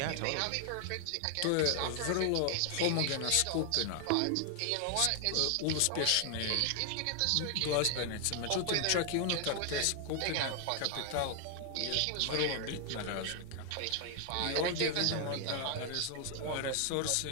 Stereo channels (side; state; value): both; different; correlation 0.00